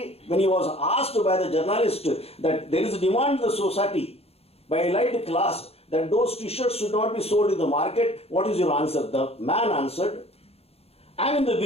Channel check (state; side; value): late; right; 0.29 ms